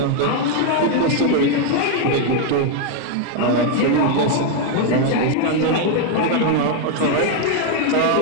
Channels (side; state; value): both; different; correlation 0.01